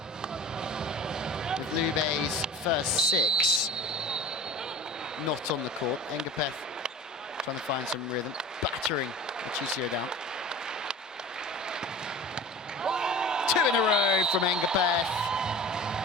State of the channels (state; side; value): normal; both; correlation 0.38